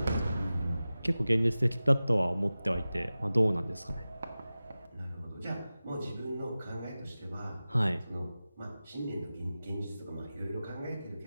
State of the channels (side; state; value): both; inverted; correlation -0.96